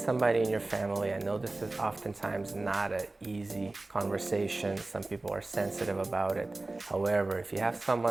in your family. I know this is oftentimes not an easy conversation. Some people are sensitive about it. However, if you have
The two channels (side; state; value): left; quieter; 3.0 dB